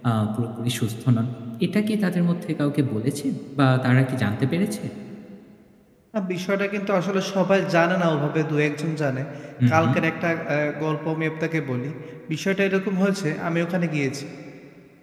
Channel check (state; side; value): identical; both; correlation 1.00